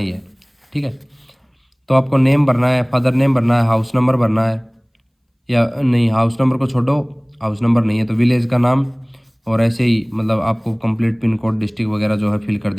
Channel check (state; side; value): identical; both; correlation 1.00